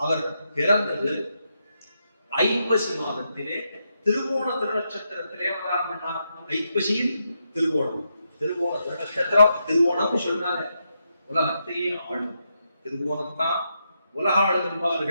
அவர் பிறந்தது ஐப்பசி மாதத்திலே திருவோண திருநட்சத்திரத்திலே அவதாரம் பண்ணார். ஐப்பசியில் திருவோணம். திருவோண திருநட்சத்திரம், திருவோணம் சொல்றாங்க உலகத்தையே ஆளும். திருவோணத்தான் உலக ஆளும்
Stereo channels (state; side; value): inverted; both; correlation -0.83